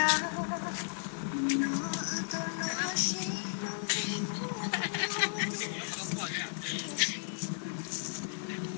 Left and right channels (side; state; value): right; silent; digital silence